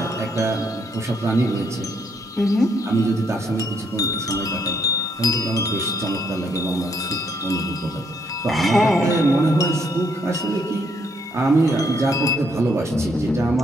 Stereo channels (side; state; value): both; normal; correlation 0.72